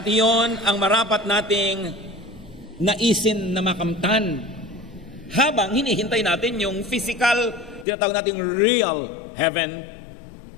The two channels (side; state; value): right; drops out; at 7.9 s